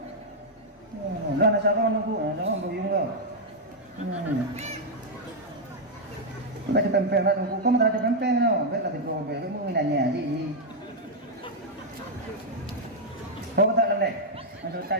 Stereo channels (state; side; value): normal; both; correlation -0.02